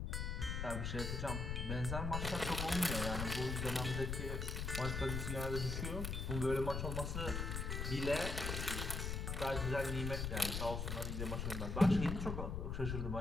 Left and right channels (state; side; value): noise; left; rumble, 2 dB below the sound